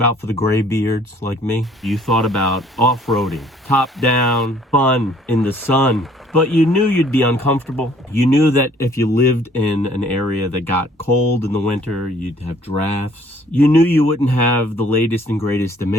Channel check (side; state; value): both; normal; correlation 0.59